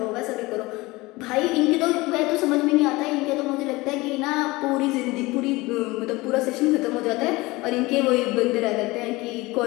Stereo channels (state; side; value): quieter; right; 21.6 dB